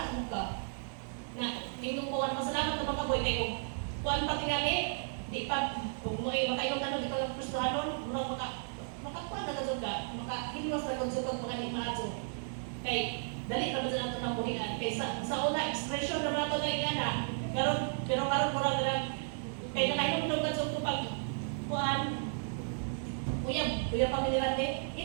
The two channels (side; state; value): left; silent; digital silence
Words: mo ka. Na, tingong ko, masalamat na mga boy, kayo, kuhan pati nga di pa, kung mo ay makainom na di ka Kristohanon, makakuha na kasod ka, makahilos na kasod ka mga himado. Kay, dali na ba sa nato ng buhian? Kay sa una, expression na nato na ingana, pero karon mo lang kay nakainom na kasod ko pag kuhan, kuya pamilirante,